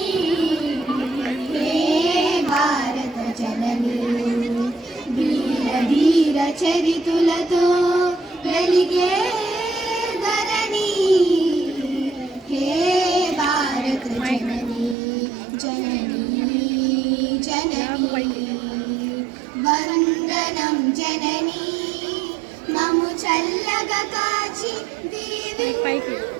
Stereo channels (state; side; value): drops out; left; at 15.0 s